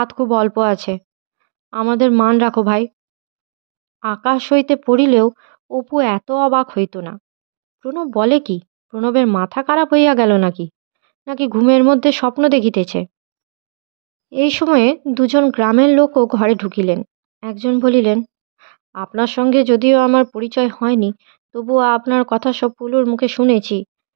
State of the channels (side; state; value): left; silent; digital silence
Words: খুব অল্প আছে। আমাদের মান রাখো ভাই। আকাশ হইতে পড়িলেও অপু এত অবাক হইত না। প্রণব বলে কি? প্রণবের মাথা খারাপ হইয়া গেল নাকি? নাকি ঘুমের মধ্যে স্বপ্ন দেখিতেছে? এই সময়ে দুজন গ্রামের লোকও ঘরে ঢুকিলেন। একজন বলিলেন, আপনার সঙ্গে যদিও আমার পরিচয় হয়নি, তবুও আপনার কথা সব পুলুর মুখে শুনেছি।